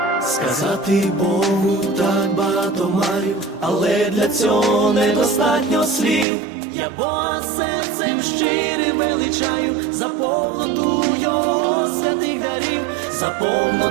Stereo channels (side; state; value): left; drops out; at 6.2 s